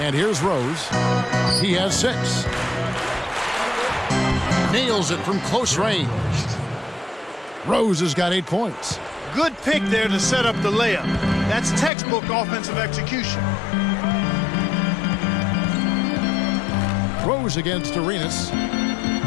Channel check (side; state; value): right; drops out; at 11.9 s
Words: And here's Rose. He has 6. Nails it from close range. Rose has got 8 points. Good pick there to set up the layup. That's textbook offensive execution. Rose against Arenas.